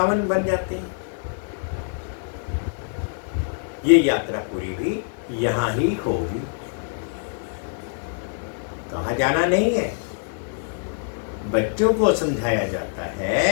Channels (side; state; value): right; silent; 62 dB below the other